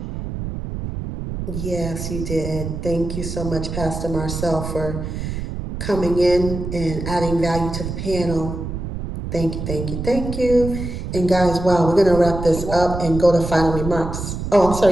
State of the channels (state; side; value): noise; right; rumble, 6 dB below the sound